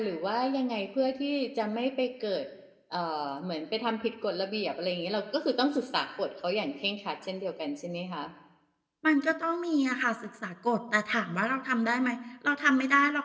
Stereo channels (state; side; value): identical; both; correlation 1.00